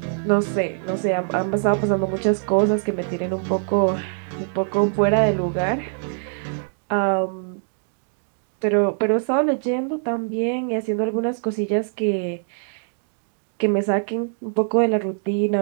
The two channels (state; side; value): silent; left; 63 dB below the other